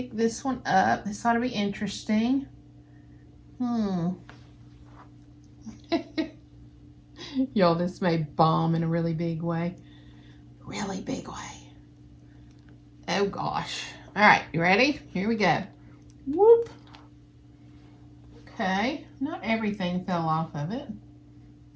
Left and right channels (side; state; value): both; identical; correlation 1.00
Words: this one up. This ought to be interesting. Y'all, this may bomb in a really big way. Really big way. Oh gosh. All right, you ready? Here we go. Whoop. Okay, not everything fell off of it.